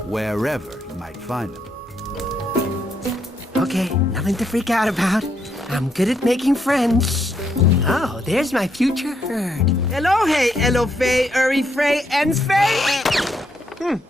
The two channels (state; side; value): normal; both; correlation 0.76